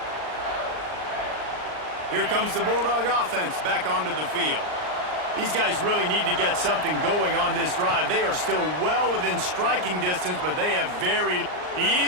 Here comes the Bulldog offense back onto the field. These guys really need to get something going on this drive. They are still well within striking distance, but they have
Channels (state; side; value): late; left; 39 ms